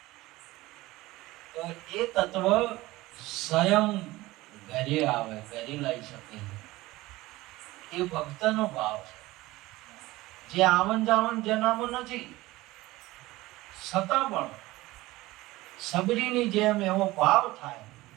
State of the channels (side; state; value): left; quieter; 18.9 dB